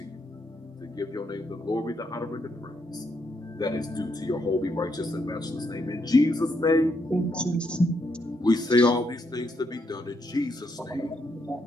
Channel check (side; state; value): both; normal; correlation 0.77